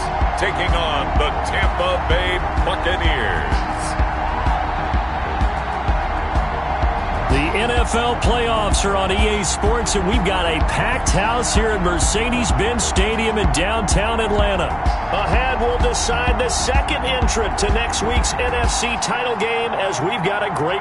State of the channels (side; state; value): both; identical; correlation 1.00